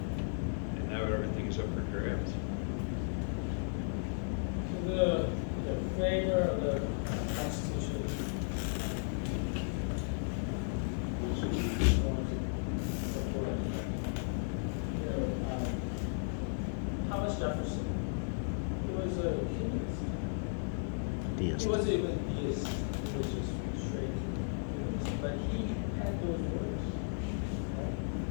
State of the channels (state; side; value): silent; right; digital silence